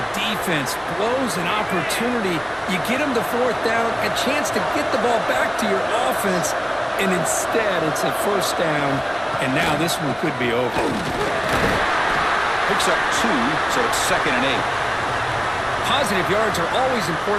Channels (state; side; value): identical; both; correlation 1.00